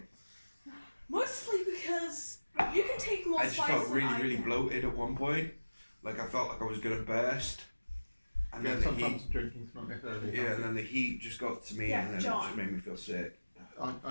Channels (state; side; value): inverted; both; correlation -1.00